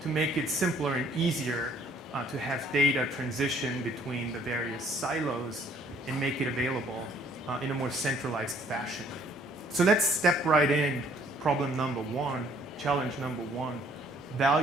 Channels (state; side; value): normal; both; correlation 0.61